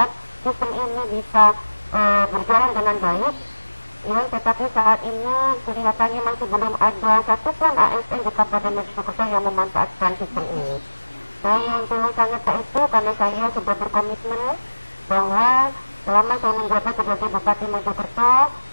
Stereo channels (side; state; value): both; inverted; correlation -1.00